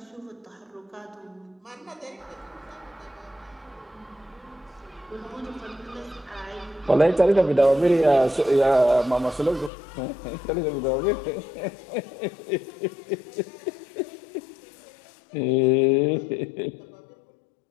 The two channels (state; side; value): drops out; right; at 9.7 s